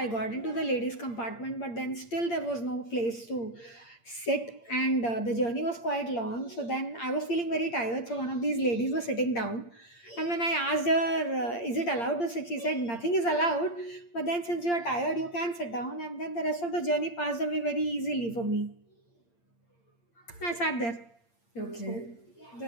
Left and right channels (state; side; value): late; right; 8.7 ms